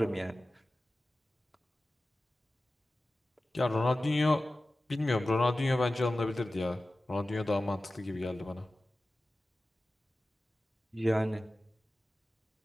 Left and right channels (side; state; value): both; normal; correlation 0.96